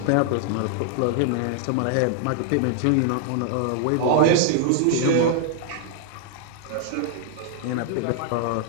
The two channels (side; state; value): both; different; correlation -0.01